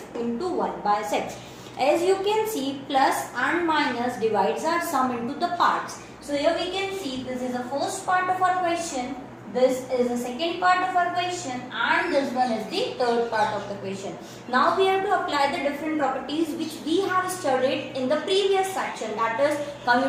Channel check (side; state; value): both; identical; correlation 1.00